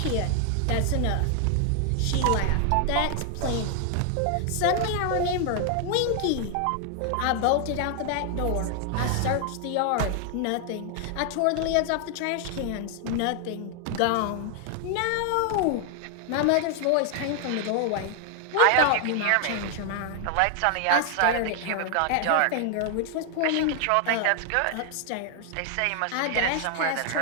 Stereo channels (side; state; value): both; different; correlation 0.00